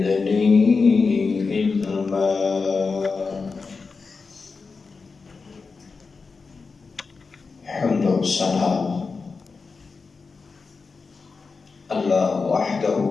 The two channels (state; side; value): quieter; right; 4.6 dB